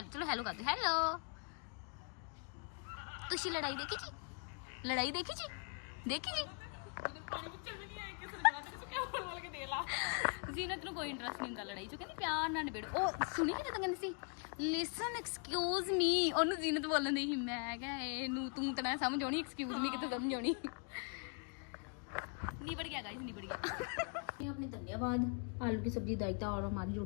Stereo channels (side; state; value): right; quieter; 37.9 dB